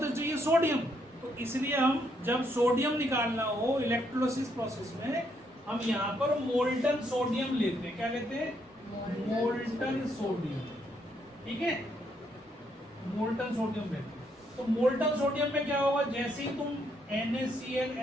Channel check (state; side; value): normal; both; correlation 0.74